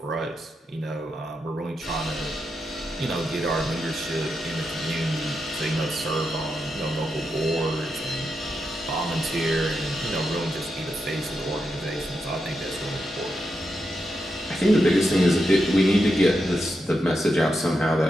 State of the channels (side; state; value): both; normal; correlation 0.86